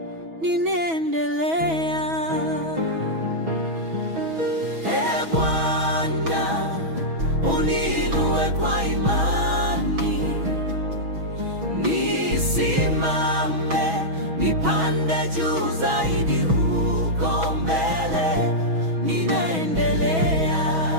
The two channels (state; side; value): late; left; 6.2 ms